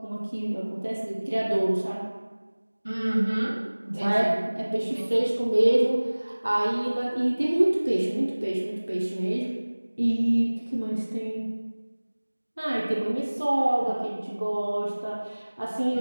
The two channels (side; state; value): both; inverted; correlation -1.00